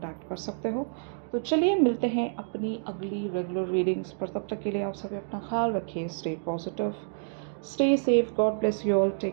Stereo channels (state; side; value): silent; left; digital silence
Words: कर सकते हो। तो चलिए मिलते हैं अपनी अगली रेगुलर रीडिंग्स पर। तब तक के लिए आप सभी अपना ख्याल रखिए। Stay positive, stay safe, God bless you all,